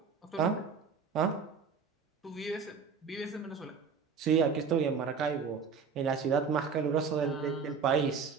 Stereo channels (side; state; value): left; quieter; 5.8 dB